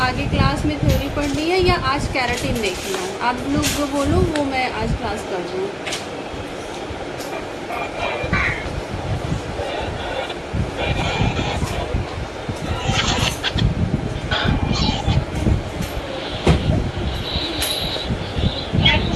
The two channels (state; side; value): identical; both; correlation 1.00